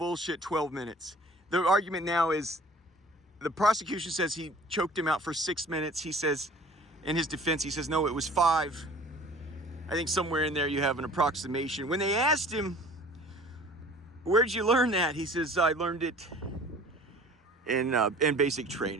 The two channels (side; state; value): both; normal; correlation 0.49